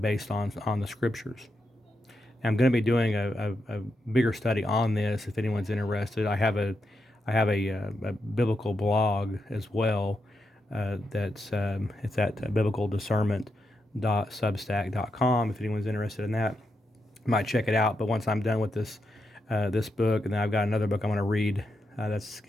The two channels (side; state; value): both; normal; correlation 0.84